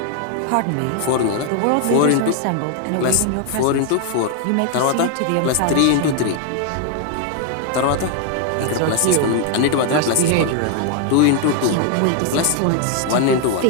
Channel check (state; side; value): different; both; correlation 0.00